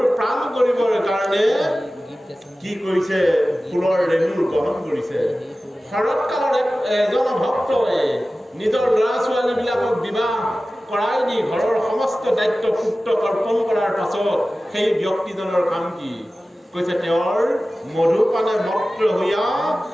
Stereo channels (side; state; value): both; normal; correlation 0.96